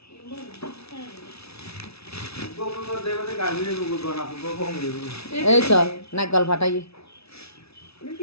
এই চ নাগল ফাটাই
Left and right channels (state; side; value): late; right; 0.78 ms